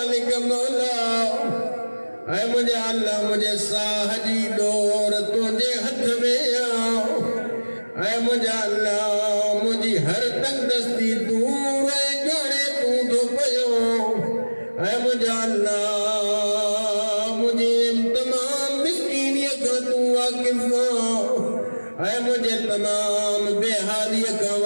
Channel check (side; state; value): both; inverted; correlation -1.00